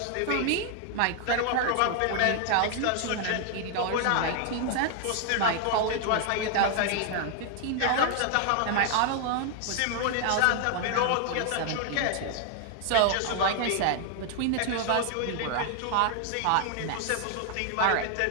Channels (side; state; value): both; different; correlation 0.00